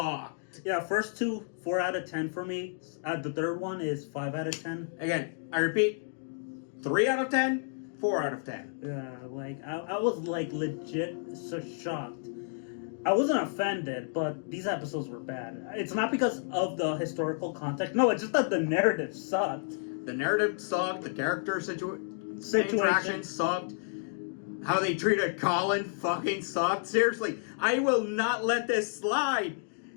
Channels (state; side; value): silent; right; digital silence